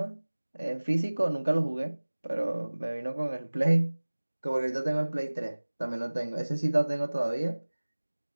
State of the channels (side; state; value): both; inverted; correlation -1.00